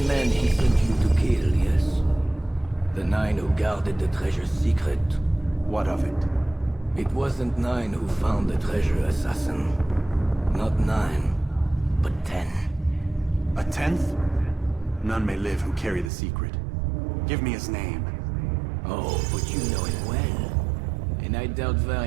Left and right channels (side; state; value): left; drops out; at 16.1 s